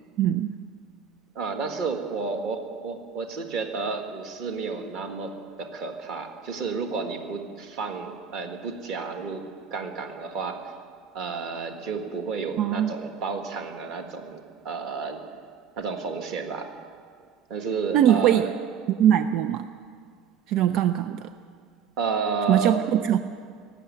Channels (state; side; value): quieter; left; 7.8 dB